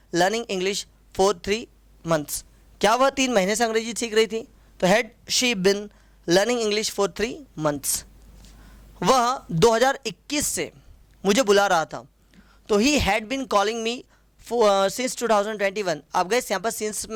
learning English for 3 months. क्या वह 3 महीने से अंग्रेजी सीख रही थी? तो had she been learning English for 3 months. वह 2021 से मुझे बुला रहा था, तो he had been calling me since 2021। आप गए यहाँ पर सिंस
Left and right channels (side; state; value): both; identical; correlation 1.00